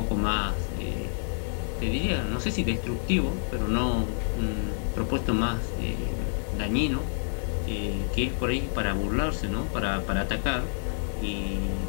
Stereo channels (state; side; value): silent; right; 59 dB below the other